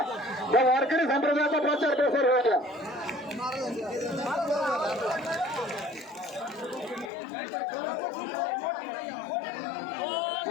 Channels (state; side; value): drops out; right; at 7.1 s